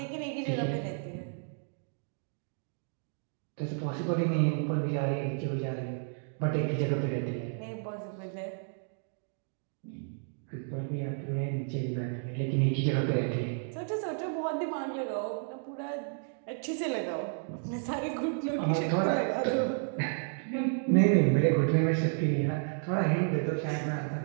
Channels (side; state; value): left; silent; 57 dB below the other